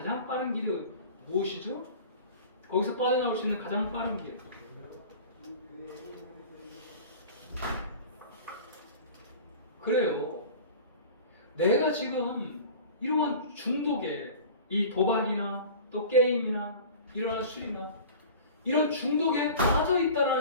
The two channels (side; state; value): both; inverted; correlation -0.40